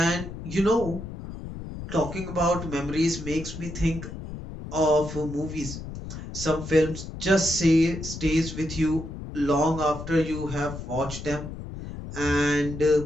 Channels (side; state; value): left; noise; rumble, 9 dB below the sound